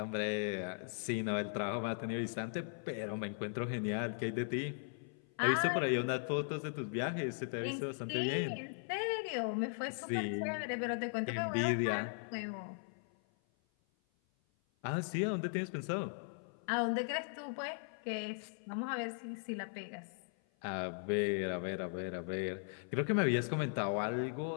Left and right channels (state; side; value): silent; right; 52 dB below the other